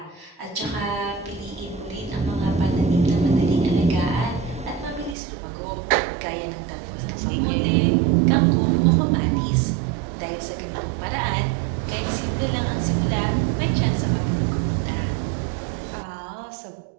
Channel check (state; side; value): drops out; left; at 5.2 s